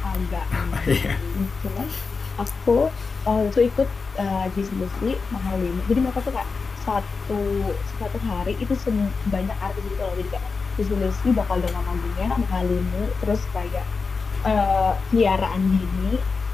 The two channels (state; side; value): quieter; right; 4.6 dB